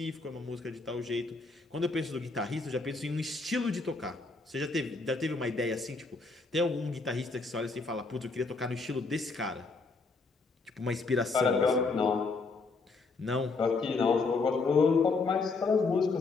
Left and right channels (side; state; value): right; quieter; 4.0 dB